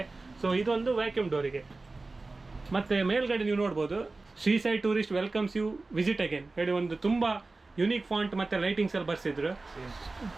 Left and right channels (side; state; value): left; quieter; 3.4 dB